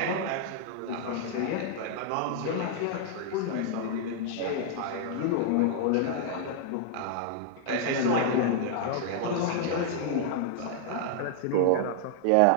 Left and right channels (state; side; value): different; both; correlation -0.01